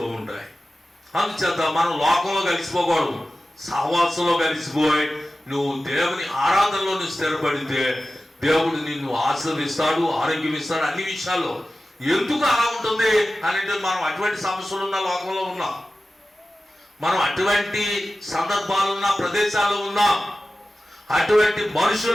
ఉంటాయి. అందుచేత మనం లోకంలో కలిసిపోకూడదు, సహవాసంలో కలిసిపోయి నువ్వు దేవుని ఆరాధనలో నువ్వు స్థిరపడితే దేవుడు నిన్ను ఆశీర్వదిస్తాడు, ఆరోగ్యం ఇస్తాడు, అన్ని విషయాల్లో. ఎందుకు అలా ఉంటుంది అని అంటే, మనం అటువంటి సమస్యలు ఉన్న లోకంలో ఉన్నాం, మనం అటువంటి సందర్భాలున్న ప్రదేశాల్లో ఉన్నాం, అటువంటి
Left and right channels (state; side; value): normal; both; correlation 0.95